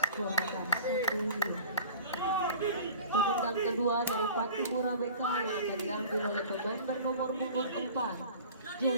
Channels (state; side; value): inverted; both; correlation -0.43